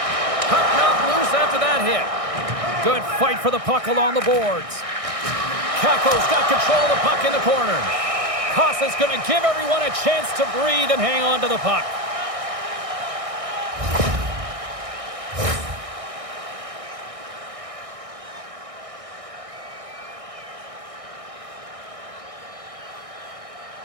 Puck knocked loose after that hit. Good fight for the puck along the boards. Kako's got control of the puck in the corner. Kosa's going to give everyone a chance to breathe and hang on to the puck.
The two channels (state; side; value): late; left; 1.6 ms